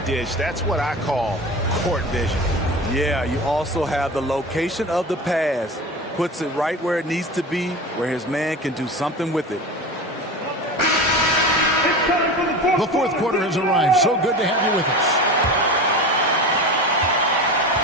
dish. That's what I call court vision. Yeah, you also have the location of the pass. Puts it right where it needs to be, where his man can do something with it. The fourth quarter has arrived. So good to have you with us.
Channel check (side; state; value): both; normal; correlation 0.30